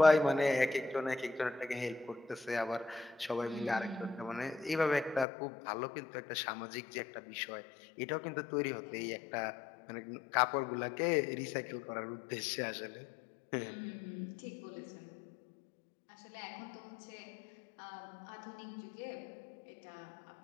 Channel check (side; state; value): right; drops out; at 5.2 s